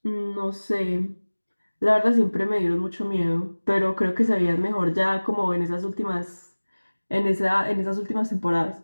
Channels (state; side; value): inverted; both; correlation -1.00